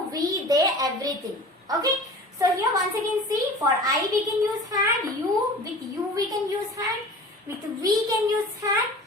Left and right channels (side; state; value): both; normal; correlation 0.39